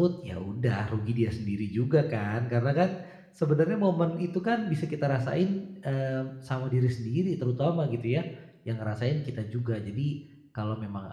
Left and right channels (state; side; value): identical; both; correlation 1.00